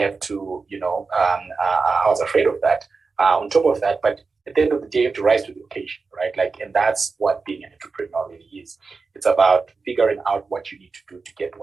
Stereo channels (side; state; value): left; quieter; 4.5 dB